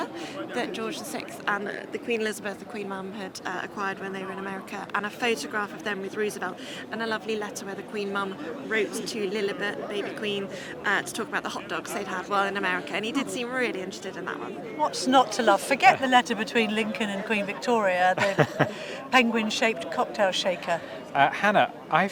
that George VI and the Queen Elizabeth, the Queen Mum, had acquired when they were in America, and a photograph of them with Roosevelt, and a lovely letter where the Queen Mum wrote to Lilibet, baby Queen, to talk about the hot dogs they'd had while in America, and he did seem really interested in that one. What's not to love? Forget the letter between Lincoln and Queen Victoria, the penguin-shaped cocktail shaker. Hannah, I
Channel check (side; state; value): both; identical; correlation 1.00